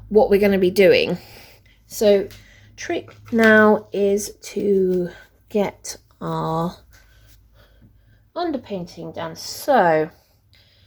what we're going to be doing. So trick now is to get our underpainting done. So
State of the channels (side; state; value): both; identical; correlation 1.00